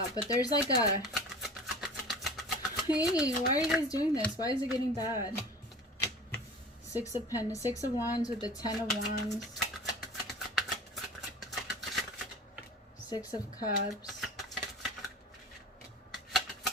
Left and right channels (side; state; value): both; normal; correlation 0.40